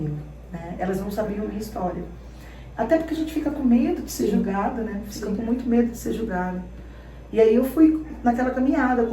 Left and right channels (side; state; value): both; identical; correlation 1.00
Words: né? Elas não sabiam a minha história. Até porque a gente fica com medo de ser julgada, né? Fica com muito medo de ser julgada. E aí eu fui naquela caminhada,